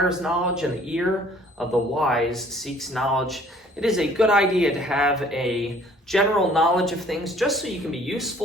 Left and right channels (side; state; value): both; normal; correlation 0.56